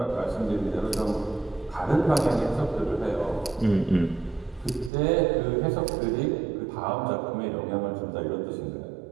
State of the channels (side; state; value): left; drops out; at 4.9 s